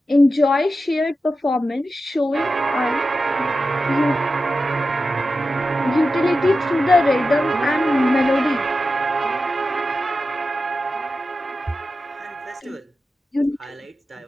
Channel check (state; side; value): normal; both; correlation 0.92